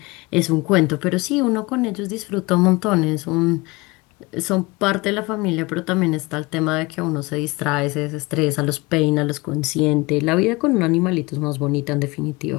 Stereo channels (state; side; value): quieter; right; 24.0 dB